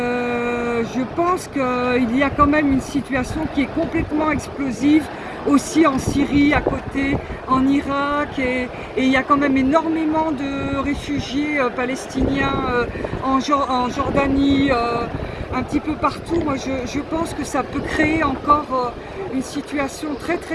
pense qu'il y a quand même une situation qui est complètement explosive, aussi en Syrie à côté, en Irak, et il y a quand même énormément de réfugiés palestiniens en Jordanie, un petit peu partout. Moi je pense que ça peut créer encore une situation très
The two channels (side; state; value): both; identical; correlation 1.00